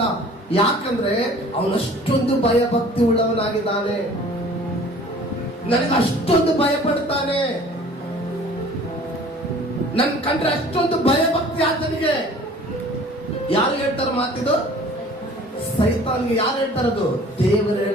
ಯಾಕಂದ್ರೆ ಅವನಷ್ಟೊಂದು ಭಯಭಕ್ತಿ ಉಳ್ಳವನಾಗಿದ್ದಾನೆ. ನನಗೆ ಅಷ್ಟೊಂದು ಭಯ ಪಡ್ತಾನೆ, ನನ್ ಕಂಡ್ರೆ ಅಷ್ಟೊಂದು ಭಯಭಕ್ತಿ ಆತನಿಗೆ. ಯಾರು ಹೇಳ್ತಾರ ಮಾತಿದು? ಸೈತಾನ್ಗೆ. ಯಾರು ಹೇಳ್ತಾರದು? ದೇವರು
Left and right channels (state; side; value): normal; both; correlation 0.49